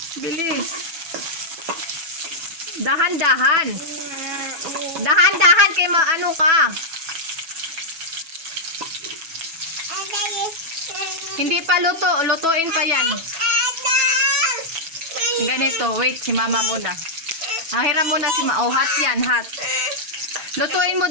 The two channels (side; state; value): left; late; 6.1 ms